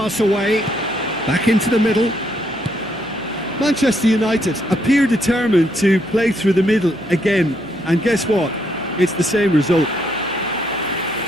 away, back into the middle. Manchester United appear determined to play through the middle again, and guess what? It's the same result.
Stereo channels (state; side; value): noise; left; hum, 26 dB below the sound